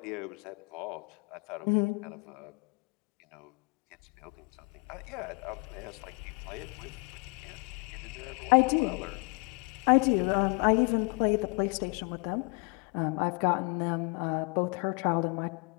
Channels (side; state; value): right; quieter; 32.2 dB